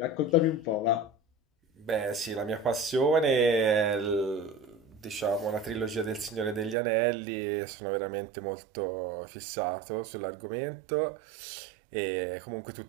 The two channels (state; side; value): drops out; left; at 6.8 s